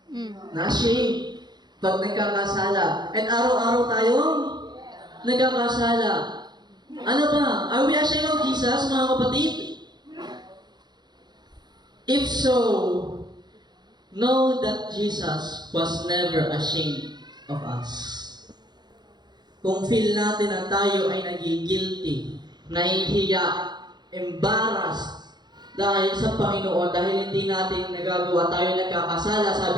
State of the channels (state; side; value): late; left; 0.21 ms